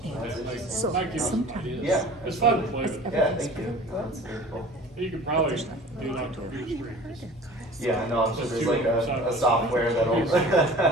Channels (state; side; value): normal; both; correlation 0.44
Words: that might give you some ideas. Yeah. It's fun to play with. Yeah, thank you. That's very cool. You could probably do it on computer screen. Yeah, no, I'm sure there's like a software that'll.